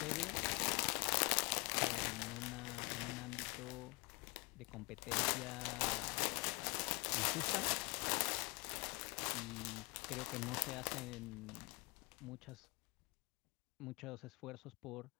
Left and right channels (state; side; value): quieter; right; 26.4 dB